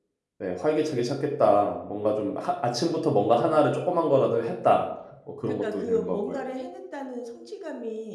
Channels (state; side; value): identical; both; correlation 1.00